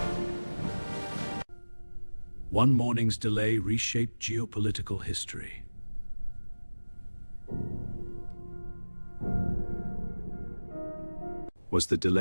One morning's delay reshaped geopolitical history. Was the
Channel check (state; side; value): inverted; both; correlation -1.00